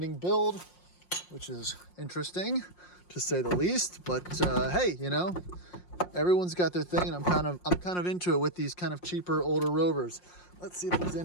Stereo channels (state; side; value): late; right; 5.6 ms